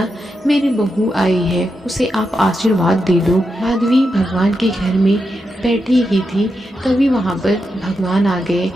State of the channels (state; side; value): normal; both; correlation 0.86